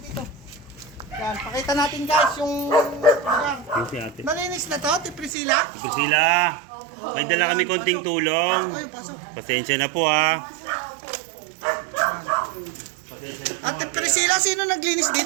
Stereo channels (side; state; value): left; drops out; at 5.3 s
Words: dito? Yan, pakita natin guys yung lugar. Malinis na to, Priscilla? Priscilla, may dala kami konting tulong. Ayun, pasok. Pasensya na po ha. Ate Priscilla, sino naglinis